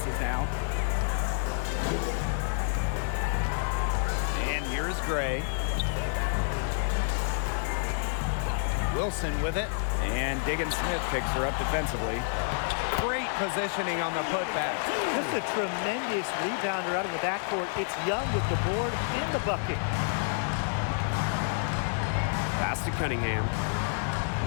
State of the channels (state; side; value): silent; right; 59 dB below the other